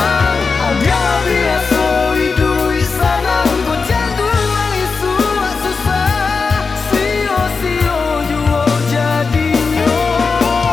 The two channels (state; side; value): quieter; right; 4.7 dB